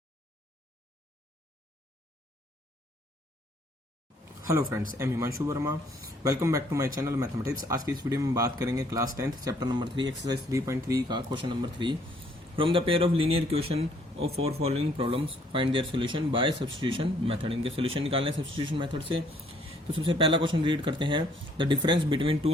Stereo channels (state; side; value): normal; both; correlation 0.64